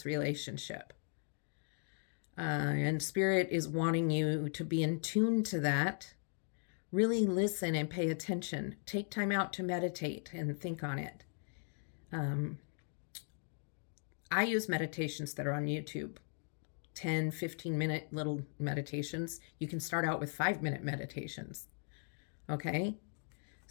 relationship. And spirit is wanting you to be in tune to that. Really listen and pay attention. Take time out to meditate and think on it. I use meditations that are on YouTube. 10, 15-minute little meditations. You can start out with 5-minute meditations. Okay?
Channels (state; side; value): silent; right; 52 dB below the other